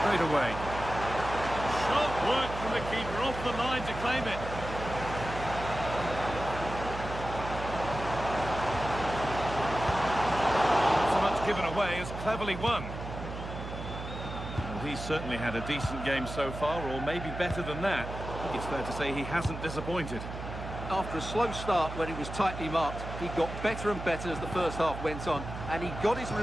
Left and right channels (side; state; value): right; noise; hum, 8 dB below the sound